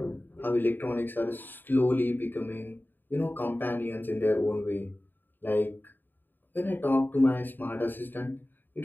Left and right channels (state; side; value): late; right; 0.092 ms